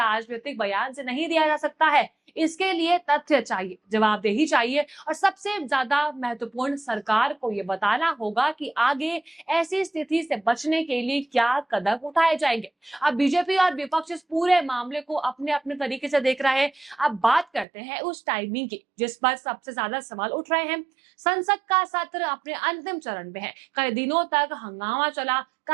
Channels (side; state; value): left; drops out; at 17.7 s